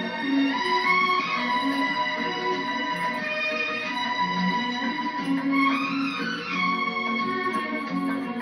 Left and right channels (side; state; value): both; identical; correlation 1.00